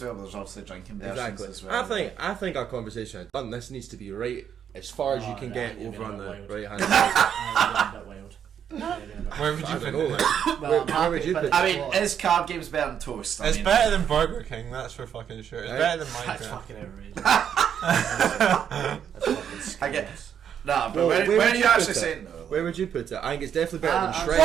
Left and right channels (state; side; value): quieter; left; 8.6 dB